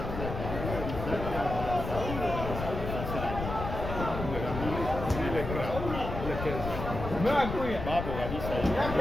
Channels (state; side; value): noise; left; rumble, 6 dB below the sound